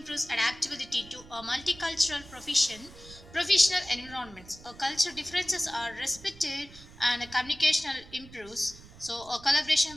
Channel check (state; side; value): noise; right; rumble, 20 dB below the sound